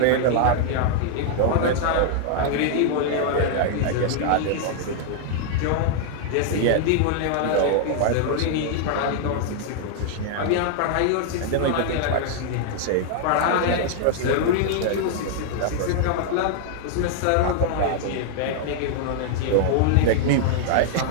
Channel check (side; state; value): both; different; correlation -0.01